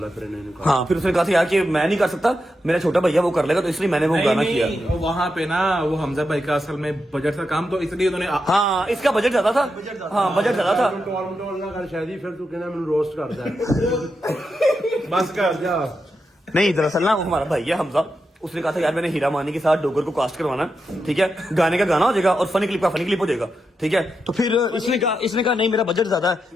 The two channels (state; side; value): normal; both; correlation 0.86